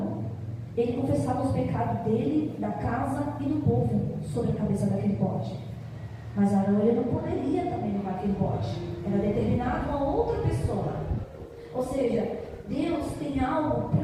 ele confessava os pecados dele, da casa e do povo, sobre a cabeça daquele bode. Mas Arão, ele não poderia também levar aquele bode. Era determinado a outra pessoa. Ou seja, Deus tem algo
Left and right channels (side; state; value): both; identical; correlation 1.00